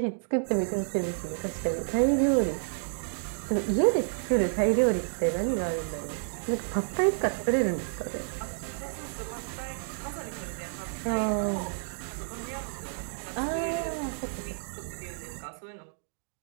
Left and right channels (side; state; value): left; silent; digital silence